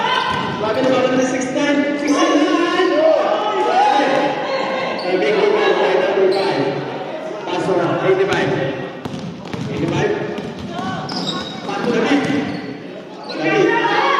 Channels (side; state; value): both; identical; correlation 1.00